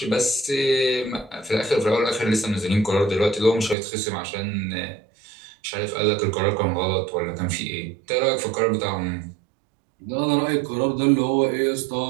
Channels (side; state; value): left; drops out; at 3.8 s